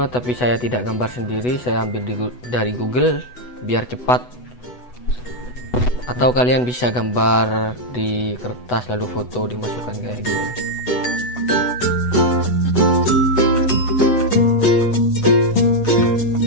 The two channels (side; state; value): right; late; 8.1 ms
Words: tapi saya tidak gambar sendiri, saya ambil dari Google biar cepat. Atau kalian bisa gambar di kertas lalu foto dimasukkan kayak gini.